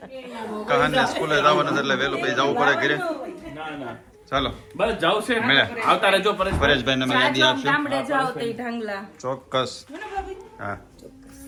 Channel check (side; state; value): both; identical; correlation 1.00